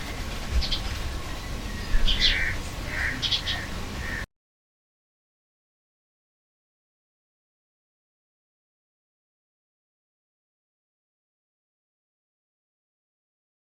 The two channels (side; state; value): both; identical; correlation 1.00